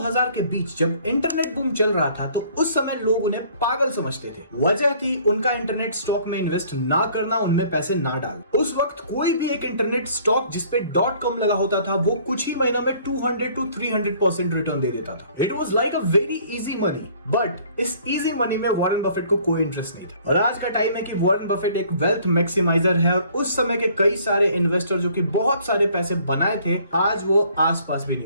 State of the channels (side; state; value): both; inverted; correlation -0.57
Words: के बीच जब इंटरनेट बूम चल रहा था तो उस समय लोग उन्हें पागल समझते थे। वजह थी उनका इंटरनेट स्टॉक में इन्वेस्ट ना करना, उनमें पैसे ना डालना। उस वक्त कोई भी एक इंटरनेट स्टॉक जिसपे .com लगा होता था वो कुछ ही महीनों में 200 to 300% रिटर्न दे देता था। It was like a very easy money, but इस इजी मनी में वॉरेन बफेट को कोई इंटरेस्ट नहीं था। और आज का टाइम है कि वॉरेन बफेट एक वेल्थ मैक्सिमाइजर है और उस समय के कई सारे इन्वेस्टर जो कि बहुत सारे पैसे बनाए थे आज वो आसपास भी